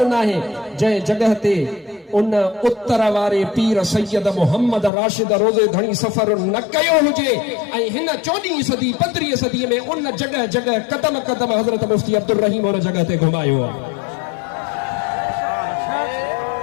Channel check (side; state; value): right; drops out; at 4.9 s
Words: न आहे जंहिं जॻह ते उन उत्तर वारे पीर सैयद मोहम्मद राशिद रोज़े धणी सफ़र न कयो हुजे ऐं हिन 14वीं सदी 15वीं सदी में उन जॻह जॻह कदम कदम हज़रत मुफ्ती अब्दुल रहीम उन जॻह ते घुमायो आहे